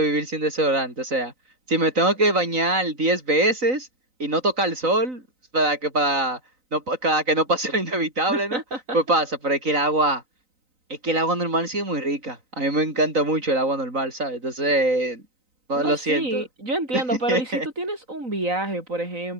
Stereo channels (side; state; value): left; late; 3.9 ms